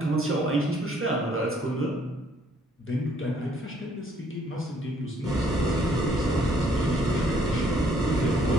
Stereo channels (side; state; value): both; normal; correlation 0.65